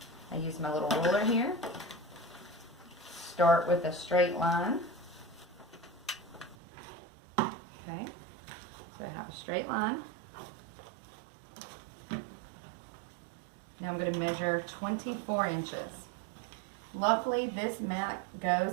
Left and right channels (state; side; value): drops out; left; at 6.6 s